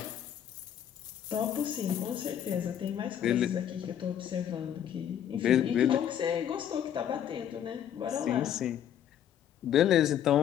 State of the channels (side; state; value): right; quieter; 9.9 dB